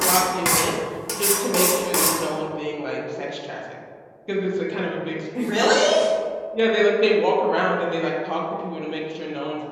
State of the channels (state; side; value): identical; both; correlation 1.00